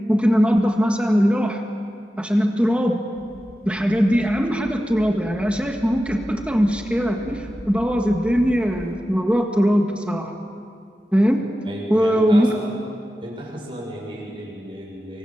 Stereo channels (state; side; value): normal; both; correlation 0.93